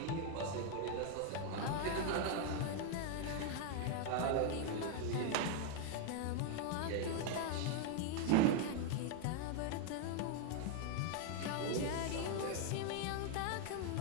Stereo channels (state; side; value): different; both; correlation 0.00